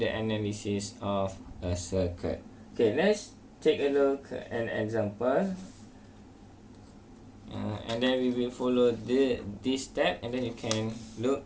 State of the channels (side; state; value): both; identical; correlation 1.00